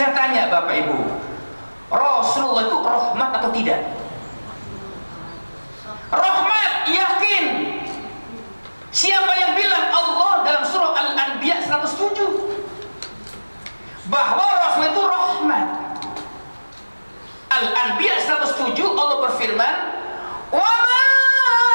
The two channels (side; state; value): both; inverted; correlation -1.00